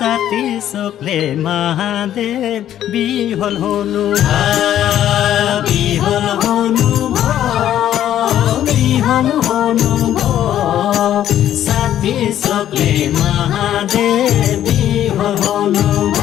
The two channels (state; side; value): quieter; right; 11.4 dB